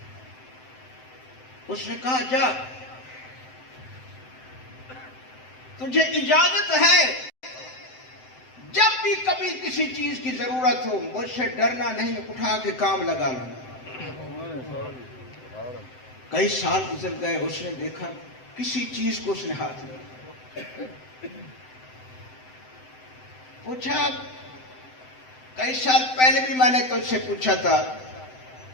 اس نے کہا جا، تجھے اجازت ہے جب بھی کبھی کسی چیز کی ضرورت ہو مجھ سے ڈرنا نہیں، اٹھا کے کام لگا لینا. کئی سال گزر گئے، اس نے دیکھا کسی چیز کو اس نے ہاتھ لیا. پوچھا کئی سال پہلے بھی میں نے تجھ سے پوچھا تھا،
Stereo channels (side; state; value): right; late; 7.8 ms